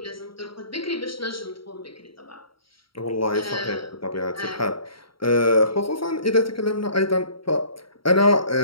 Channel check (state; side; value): late; right; 0.74 ms